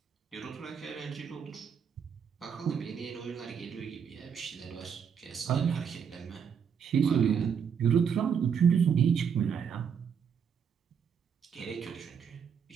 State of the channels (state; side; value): quieter; left; 7.2 dB